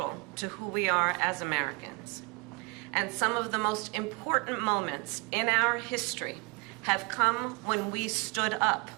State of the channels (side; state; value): left; quieter; 29.4 dB